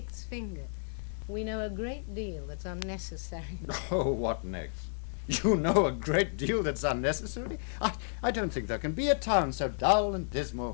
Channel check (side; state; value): right; silent; 56 dB below the other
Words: finger. We know a great deal that's unnecessary. Oh, what next? You know a great deal that's unnecessary? I don't think there can be a town so dull and